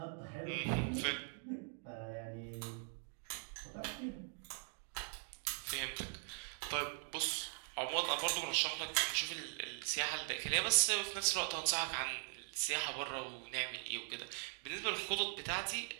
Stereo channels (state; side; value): silent; left; 50 dB below the other